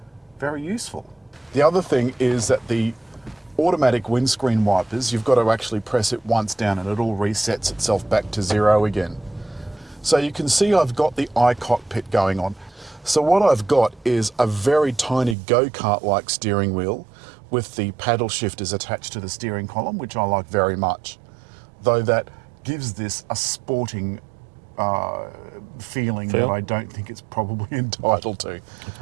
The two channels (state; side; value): drops out; left; at 15.4 s